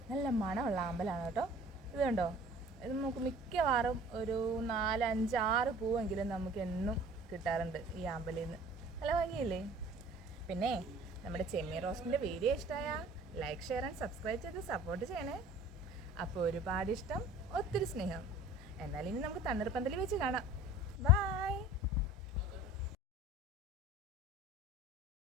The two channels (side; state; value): both; normal; correlation 0.47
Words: നല്ല മണമുള്ള ആമ്പലാണ് കേട്ടോ. ഇത് കണ്ടോ, ഇത് നമുക്ക് മിക്കവാറും ഒരു 4, 5, 6 പൂവെങ്കിലും നമുക്ക് എന്നും കിട്ടാറുണ്ട് ഈ ആമ്പലിൽ നിന്ന്. നല്ല ഭംഗിയില്ലേ? പിന്നെ നമ്മുടെ ചെമ്മീൻ റോസ്റ്റിൻ്റെ വീഡിയോ ഇഷ്ടമായ ലൈക്ക്, ഷെയർ ആൻഡ് സബ്സ്ക്രൈബ് ചെയ്ത് സപ്പോർട്ട് ചെയ്യണേ. അപ്പോൾ ഒരുപാട് ഇഷ്ടം, ഒത്തിരി സ്നേഹം. എന്നാൽ ഇനി നമുക്ക് തണ്ണീർപ്പന്തലിൽ വെച്ച് കാണാം. ബൈ.